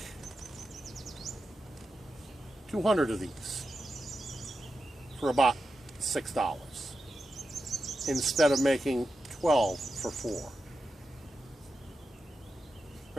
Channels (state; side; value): normal; both; correlation 0.90